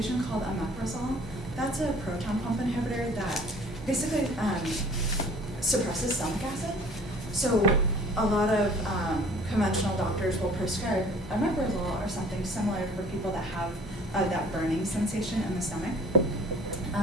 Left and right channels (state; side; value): noise; right; hum, 16 dB below the sound